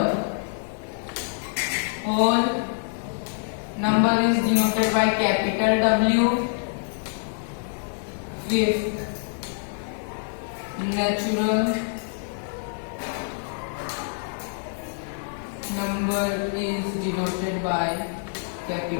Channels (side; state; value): right; silent; 61 dB below the other